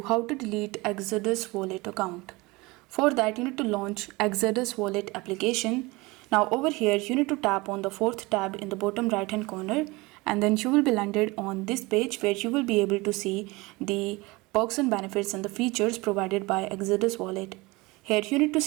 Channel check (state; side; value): quieter; left; 23.3 dB